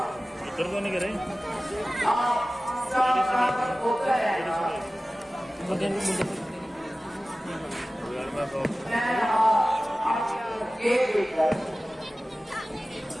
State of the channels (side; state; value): both; normal; correlation 0.96